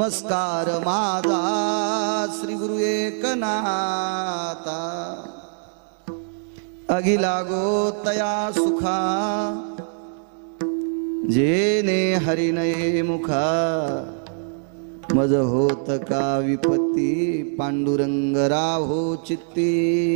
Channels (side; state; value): left; silent; digital silence